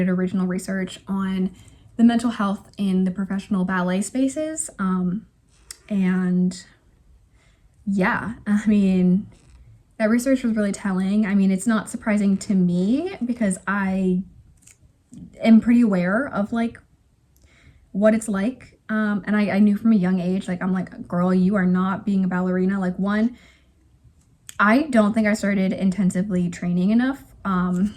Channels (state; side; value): identical; both; correlation 1.00